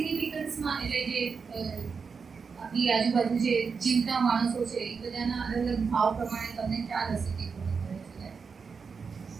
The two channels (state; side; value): quieter; left; 5.4 dB